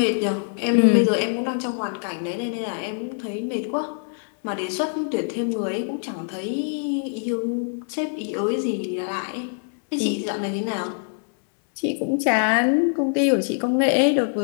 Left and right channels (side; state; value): right; silent; digital silence